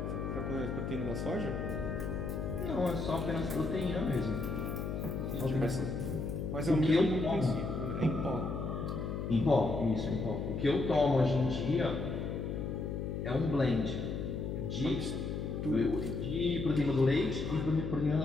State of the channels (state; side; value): noise; left; hum, 3 dB below the sound